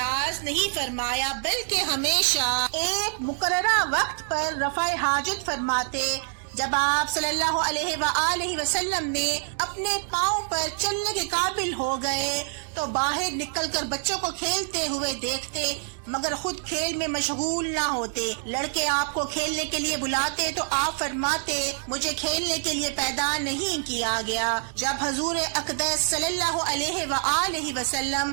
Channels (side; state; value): left; silent; digital silence